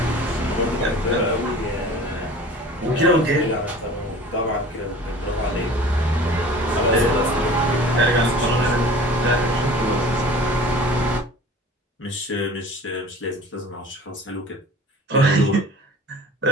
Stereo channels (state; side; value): normal; both; correlation 0.43